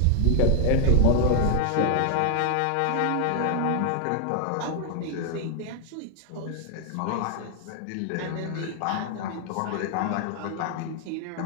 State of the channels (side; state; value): both; different; correlation 0.00